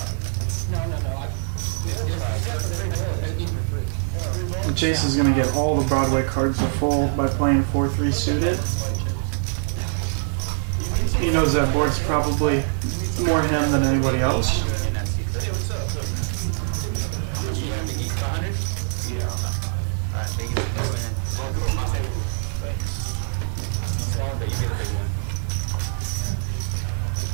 And Chase is going to get all the Broadway cards to fold by playing 4-3 suited. He knows that board's probably more him than anybody else.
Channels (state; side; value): silent; left; 63 dB below the other